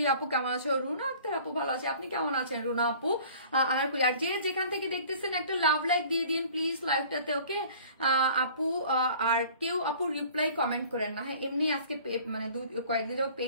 আপু কেমন আছো? রুনা আক্তার আপু ভালো আছে, আপনি কেমন আছেন রুনা আপু? আনারকলি, আর যে যেখান থেকে দেখতেছেন একটা লাভ লাইক দিয়ে দিন প্লিজ লাইভটাতে, ওকে আপু। আর কেউ আপু রিপ্লাই কমেন্ট করেন না, হ্যাঁ এমনি আজকে মানে কয়েকদিন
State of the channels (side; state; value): both; inverted; correlation -0.48